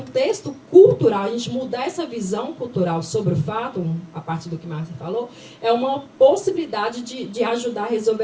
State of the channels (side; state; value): both; identical; correlation 1.00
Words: cultural, a gente mudar essa visão cultural sobre o fato, a partir do que Márcia falou, é uma possibilidade de ajudar a